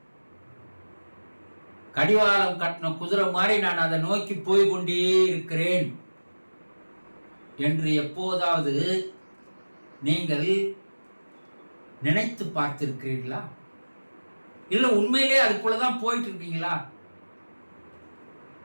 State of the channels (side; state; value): both; inverted; correlation -1.00